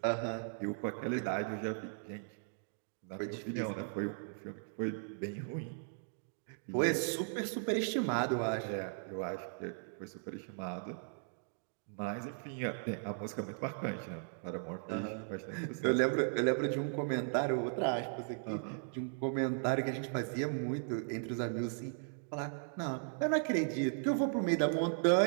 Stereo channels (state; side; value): silent; left; digital silence